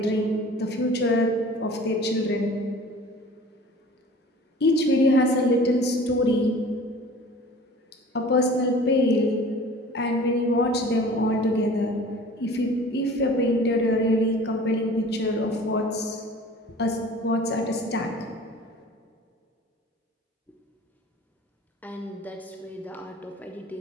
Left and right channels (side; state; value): both; normal; correlation 0.44